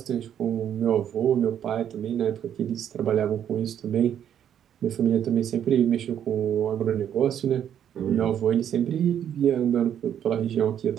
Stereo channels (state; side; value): quieter; left; 9.6 dB